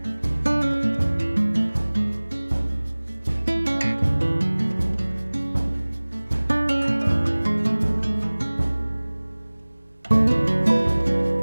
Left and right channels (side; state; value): both; inverted; correlation -1.00